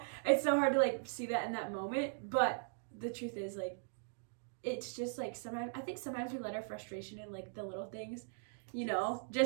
it's so hard to like see that in that moment. But the truth is like, it's just like sometimes we let our frustration in like the little things, you know,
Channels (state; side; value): silent; left; digital silence